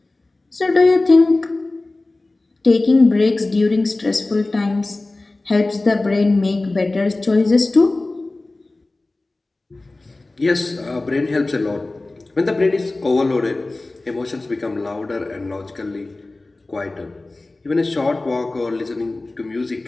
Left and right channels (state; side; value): quieter; right; 3.0 dB